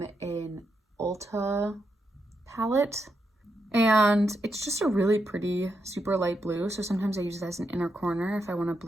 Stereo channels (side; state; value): both; normal; correlation 0.83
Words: an Ulta palette, and it's just a really pretty, super light blue, so sometimes I use it as an inner corner if I want a